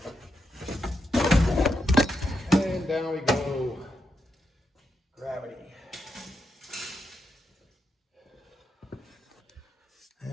Down we go. Gravity.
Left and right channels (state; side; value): normal; both; correlation 0.83